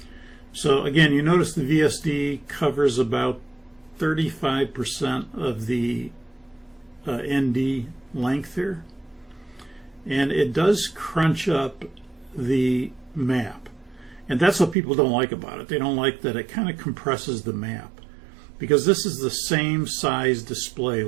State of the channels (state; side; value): drops out; left; at 14.8 s